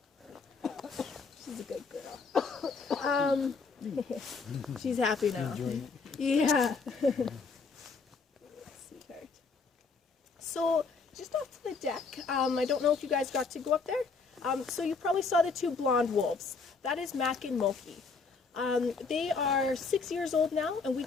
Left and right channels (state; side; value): quieter; right; 4.6 dB